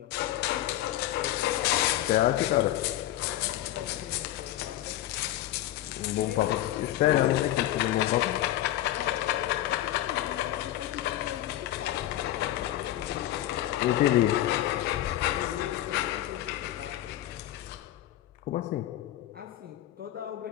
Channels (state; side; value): quieter; right; 13.9 dB